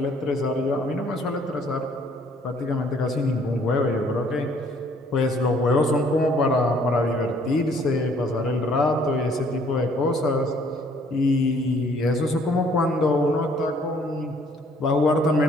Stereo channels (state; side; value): normal; both; correlation 0.61